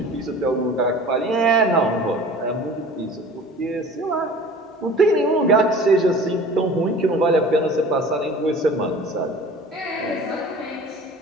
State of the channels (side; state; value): both; normal; correlation 0.43